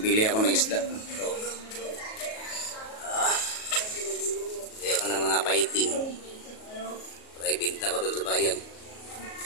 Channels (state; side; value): late; right; 37 ms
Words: ako ng isda. Ito. Bili ako ng mga paiting. Para ibenta ko dun sa bayan.